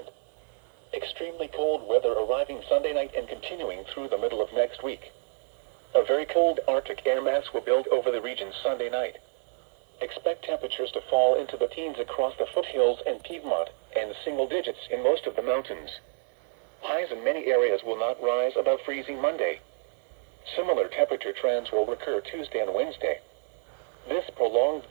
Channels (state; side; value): silent; left; 59 dB below the other